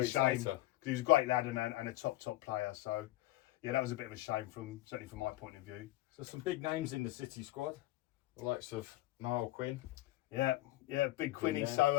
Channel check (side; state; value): right; quieter; 17.0 dB